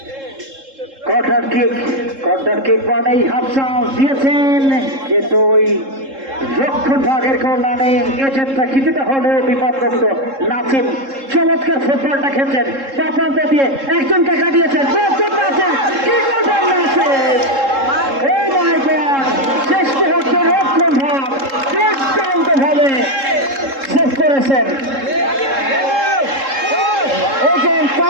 কর্নার কিক মানেই হাফসাও দিয়েছেন, কিন্তু ওই রক্ষণ ভাগের কল্যাণে এজেন্টটা কিছুটা হলেও বিপদগ্রস্ত। নাসিম চমৎকার ফুটবলটা খেলছেন, তা প্রান্ত দিয়ে একজনকে কাটিয়েছেন। শেষ মুহূর্তে রক্ষণ ভাগ দুর্দান্ত ভাবে শেষ করেছেন।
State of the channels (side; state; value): left; late; 3.7 ms